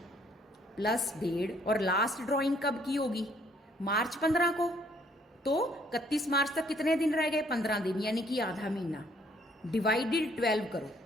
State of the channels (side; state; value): both; normal; correlation 0.64